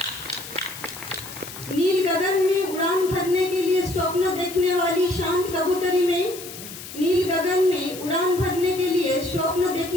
नील गगन में उड़ान भरने के लिए स्वप्न देखने वाली शांत कबूतरी में, नील गगन में उड़ान भरने के लिए स्वप्न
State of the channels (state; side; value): noise; left; hiss, 13 dB below the sound